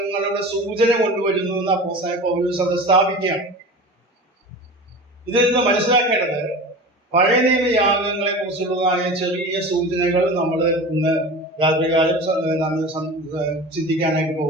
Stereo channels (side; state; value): both; normal; correlation 0.34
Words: സൂചന കൊണ്ടുവരുന്നു എന്ന് അപ്പോസ്തലനായ പൗലോസ് അത് സ്ഥാപിക്കുകയാണ്. ഇതിൽ നിന്ന് മനസ്സിലാക്കേണ്ടത് പഴയ നിയമ യാഗങ്ങളെ കുറിച്ചുള്ളതായ ചെറിയ സൂചനകൾ നമ്മൾ ഇന്ന് രാത്രികാലം ചിന്തിക്കാനായിട്ട്